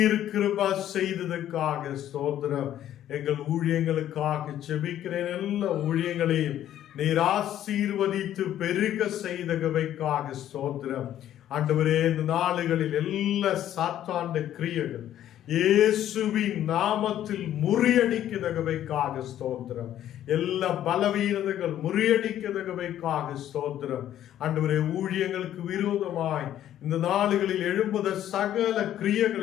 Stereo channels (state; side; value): quieter; right; 11.7 dB